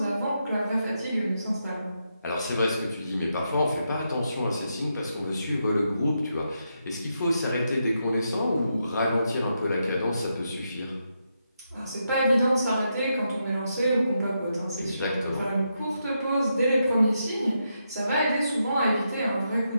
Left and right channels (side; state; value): both; inverted; correlation -0.83